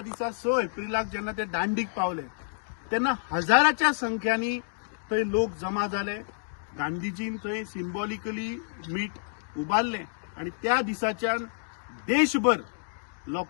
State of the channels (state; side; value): silent; right; digital silence